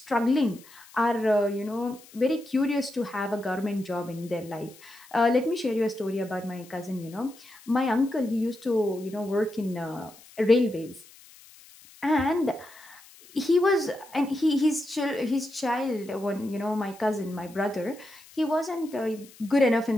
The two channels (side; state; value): left; noise; hiss, 23 dB below the sound